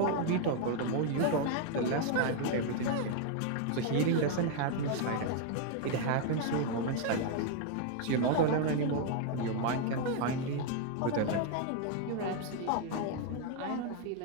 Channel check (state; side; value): different; both; correlation 0.00